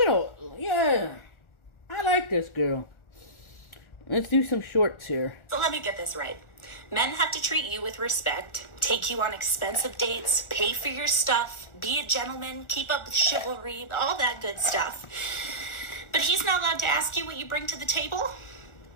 like this girl. Let's do some shorts here. So let me get this right. Men have to treat you with respect, take you on expensive dates, pay for your stuff, be a gentleman, keep up with chivalry, all that good stuff. But he's not allowed to ask you what you bring to the table?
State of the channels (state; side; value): late; right; 1.4 ms